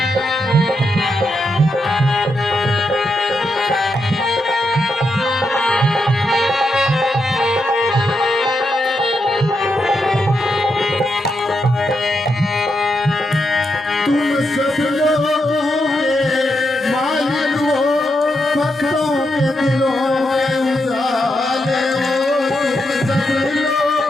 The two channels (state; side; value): normal; both; correlation 0.83